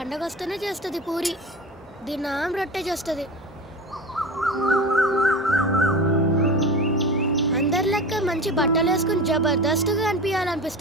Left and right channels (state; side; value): normal; both; correlation 0.30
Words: వస్తేనే చేస్తుంది పూరి. దినం రొట్టె చేస్తుంది. అందరి లెక్క మంచి బట్టలు వేసుకుని జబర్దస్త్గా